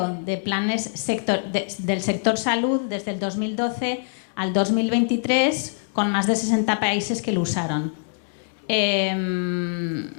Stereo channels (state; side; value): silent; right; digital silence